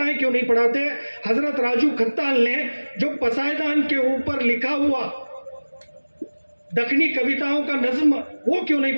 क्यों नहीं पढ़ाते? हजरत राजू खत्ताल ने जो पसायदान के ऊपर लिखा हुआ दखनी कविताओं का नज्म, वो क्यों नहीं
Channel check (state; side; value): inverted; both; correlation -1.00